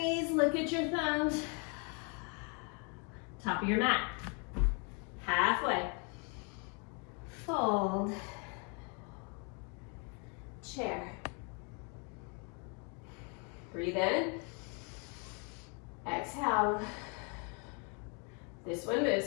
look at your thumbs. Top of your mat. Halfway. Fold. Chair. Breathe in. Exhale. This one moves.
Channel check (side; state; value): right; quieter; 36.0 dB